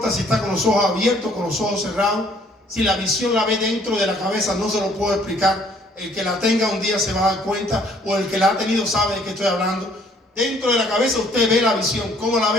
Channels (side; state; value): both; normal; correlation 0.61